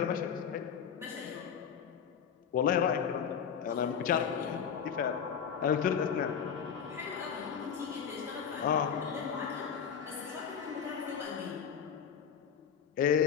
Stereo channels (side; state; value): right; quieter; 7.6 dB